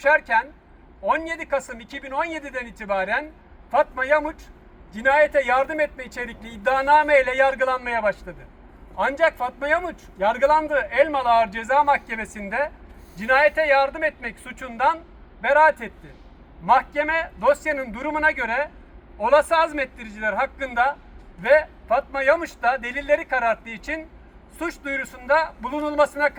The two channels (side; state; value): both; identical; correlation 1.00